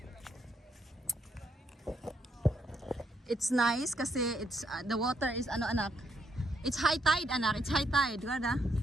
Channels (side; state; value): both; normal; correlation 0.76